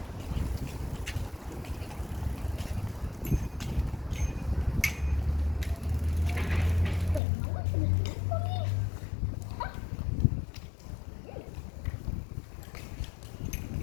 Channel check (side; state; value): right; drops out; at 7.2 s